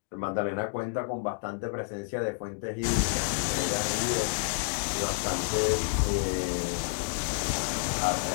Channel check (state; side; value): silent; right; digital silence